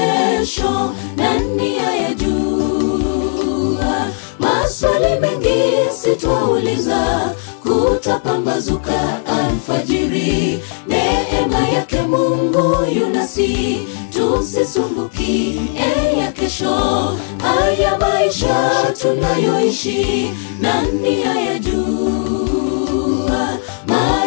nani ayajua? Maswali mengi sitwauliza, kutapambazuka alfajiri. Neema yake Mungu yunasi, tusisumbuki ya kesho. Haya maisha tunayoishi nani ayajua?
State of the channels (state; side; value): silent; right; digital silence